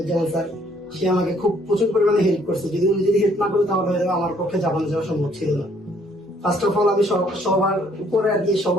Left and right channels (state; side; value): normal; both; correlation 0.64